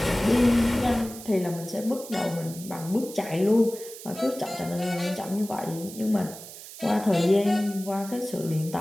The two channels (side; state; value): right; noise; hiss, 14 dB below the sound